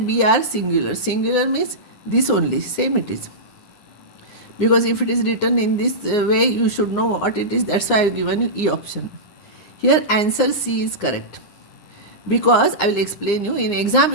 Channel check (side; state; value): right; late; 9.8 ms